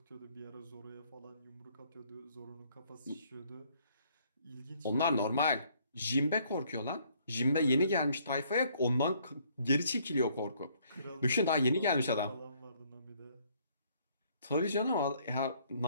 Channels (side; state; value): both; inverted; correlation -0.64